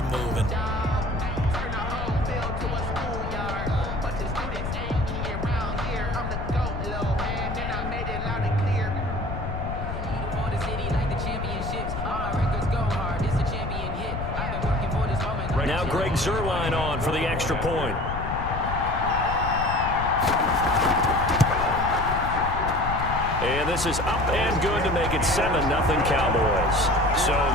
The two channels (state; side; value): noise; left; rumble, 5 dB below the sound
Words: moving. Now Greg Zuerlein on for the extra point. And this is up and good to make it 7-0 Cowboys. So